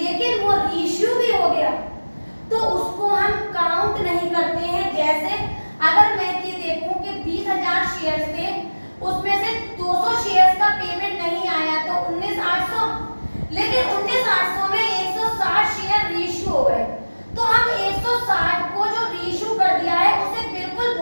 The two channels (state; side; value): inverted; both; correlation -1.00